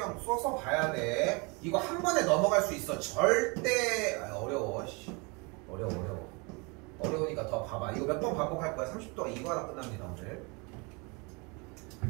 써서 봐야 돼. 이거 한 번에 넘어갈 수 있어. 절대 어려워. 어려우니까 더 봐봐. 이거 몇 번 반복할 거야. 30도가 이거 하나 끝납니다 오늘.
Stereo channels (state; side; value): quieter; left; 29.7 dB